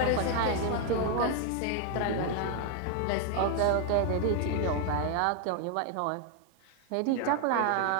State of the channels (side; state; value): both; different; correlation 0.00